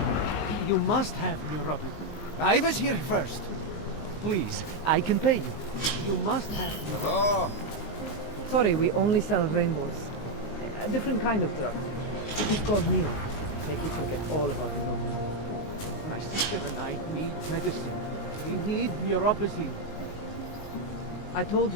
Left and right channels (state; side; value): late; right; 19 ms